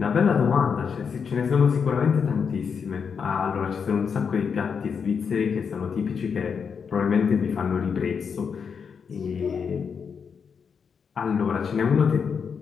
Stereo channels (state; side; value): quieter; right; 6.3 dB